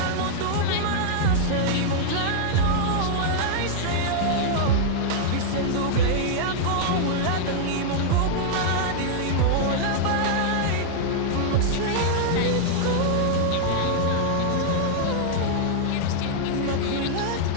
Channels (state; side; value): different; both; correlation -0.01